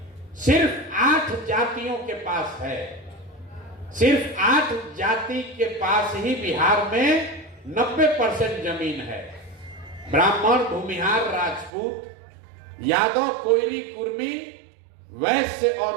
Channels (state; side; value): drops out; left; at 11.7 s